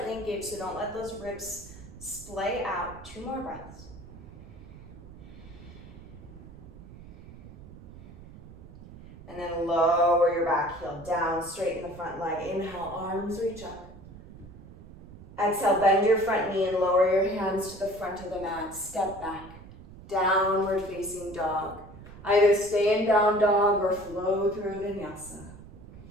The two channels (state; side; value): noise; right; rumble, 17 dB below the sound